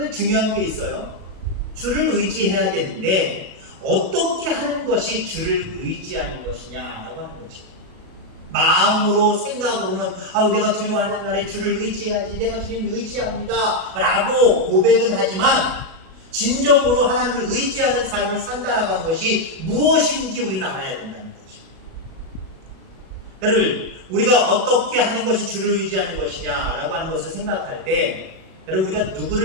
중요한 게 있어요. 주를 의지해야 되는데 어떻게 하는 것이 주를 의지하는 것이냐라고 하는 거죠. 마음으로, 생각으로는 내가 두려워하는 날에 주를 의지해야지, 내가 주님을 의지합니다 라고 고백은 하지만 진정으로 하나님을 의지하는 삶을 산다라고 하는 것이 무엇인지 우리는 알아야 된다는 거죠. 여러분, 우리가 어떻게 하는 것이 주를 의지하는 것이냐라고 하는 것을 생각할 때, 여러분, 우리가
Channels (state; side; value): late; left; 37 ms